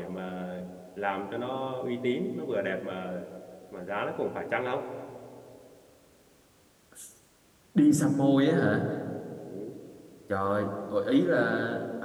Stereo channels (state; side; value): identical; both; correlation 1.00